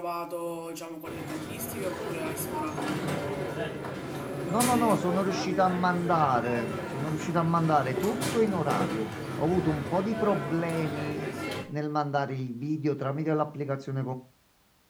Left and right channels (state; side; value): identical; both; correlation 1.00